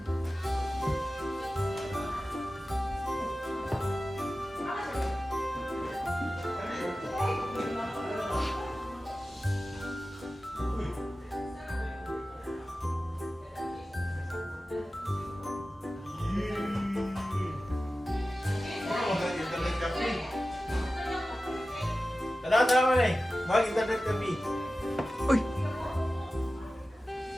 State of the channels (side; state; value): both; normal; correlation 0.95